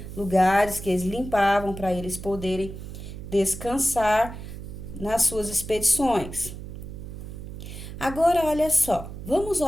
lugares que eles limpavam para eles poderem descansar nas suas expedições. Agora, olha só, vamos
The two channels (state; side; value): noise; right; hum, 10 dB below the sound